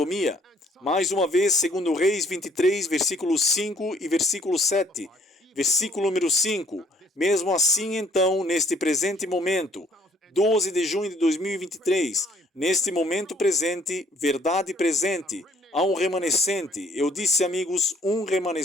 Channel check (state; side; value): normal; both; correlation 0.61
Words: Mais uma vez, segundo Reis 23, versículo 5 e versículo 7. Versículo número 5. Mesmo assim, então, neste presente momento, 12 de junho de 2023, neste momento presente, verdade presente, há um remanescente. Eu disse, amigos, um